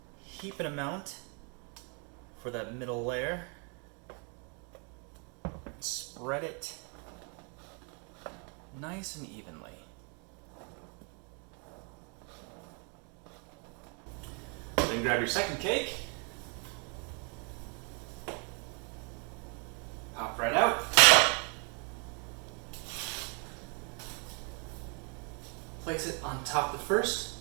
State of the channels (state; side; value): quieter; left; 36.5 dB